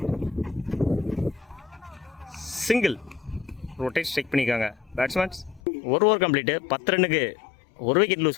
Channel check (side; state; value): right; drops out; at 5.6 s